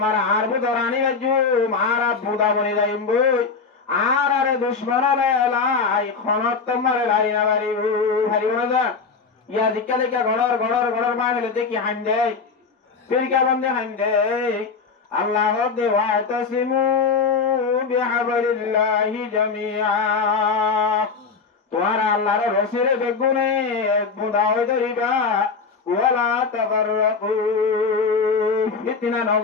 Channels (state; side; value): quieter; right; 5.0 dB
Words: আর বুধরানি বাজু মারা বুধা বনি যাইম বই আর আরে দুশ্মন লাই খনত তোমার লারি না বাড়ি হারিব না যা ইয়া দিকা দিকা গড়র মা হলে দেখি হাইন দেয় ফিরকা বন্ধে হাইন দেয় আল্লাহ দেওয়া তাসিমু বিহাবলিল্লাহি জামিআ তোমার আল্লাহর রসিরে বেগুনে বুধা হয়ে ধরিবা ওয়ালা তাবাররাকু ফিতনা